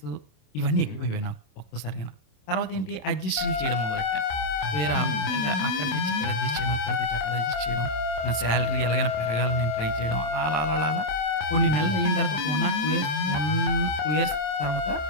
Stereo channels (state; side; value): late; right; 27 ms